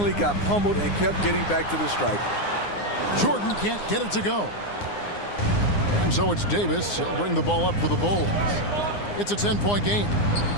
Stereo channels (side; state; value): right; late; 9.7 ms